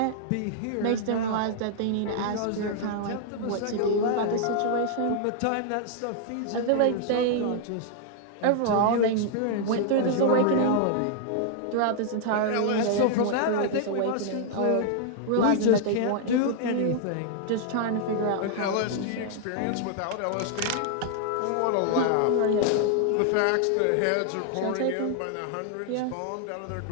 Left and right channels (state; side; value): different; both; correlation -0.01